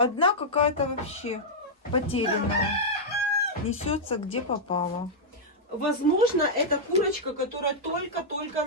какая-то вообще потерянная. Несется где попало. Возможно, это курочка, которая только-только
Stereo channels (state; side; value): normal; both; correlation -0.06